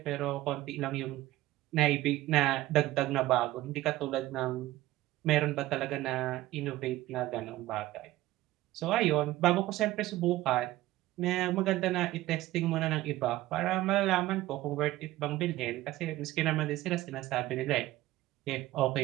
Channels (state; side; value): quieter; left; 16.5 dB